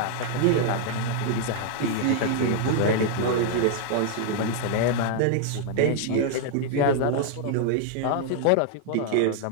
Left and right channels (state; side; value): different; both; correlation 0.00